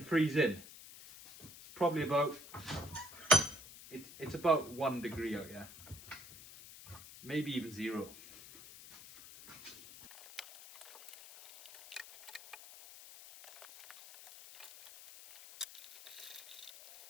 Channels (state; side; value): noise; left; hiss, 16 dB below the sound